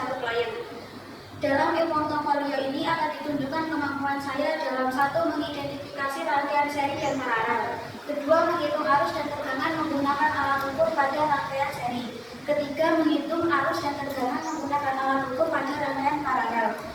Klayen. Dalam e-portofolio ini akan ditunjukkan kemampuan saya dalam satu mengidentifikasi rangkaian seri dan paralel, kedua menghitung arus dan tegangan menggunakan alat ukur pada rangkaian seri, ketiga menghitung arus dan tegangan menggunakan alat ukur pada rangkaian paralel,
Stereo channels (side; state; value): both; identical; correlation 1.00